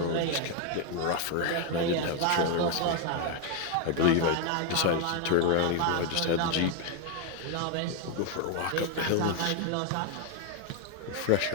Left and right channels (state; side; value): different; both; correlation 0.01